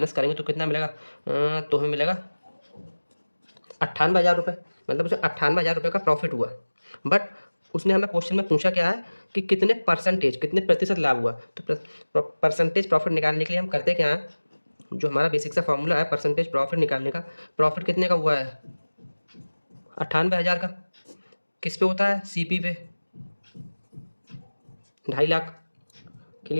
करेंगे तो कितना मिलेगा? तो हमें मिलेगा 98,000 रुपये, मतलब उसे 98,000 रुपये का प्रॉफिट हुआ। बट उसने हमें क्वेश्चन में पूछा क्या है कि कितने परसेंटेज, कितने प्रतिशत लाभ हुआ। तो परसेंटेज प्रॉफिट निकालने के लिए हम करते क्या हैं, जो हमारा बेसिक सा फॉर्मूला है परसेंटेज प्रॉफिट निकालने का, प्रॉफिट कितने का हुआ है? 98,000 का। किस पे होता है? सीपी पे 2.5 लाख।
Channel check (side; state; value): both; inverted; correlation -1.00